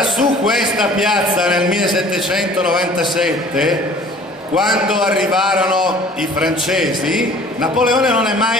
su questa piazza nel 1797, quando arrivarono i francesi, Napoleone non è mai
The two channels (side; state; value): both; normal; correlation 0.50